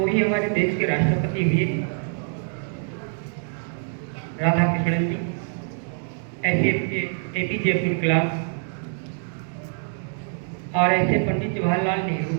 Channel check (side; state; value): left; silent; 62 dB below the other